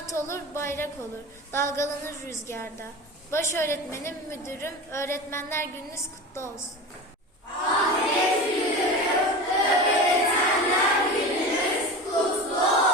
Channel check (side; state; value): both; normal; correlation 0.30